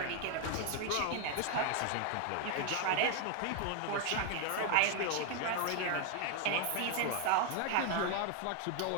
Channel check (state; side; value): different; both; correlation 0.00